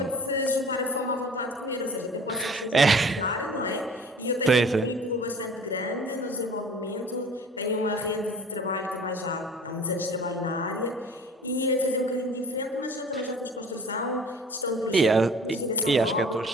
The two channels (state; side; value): normal; both; correlation 0.45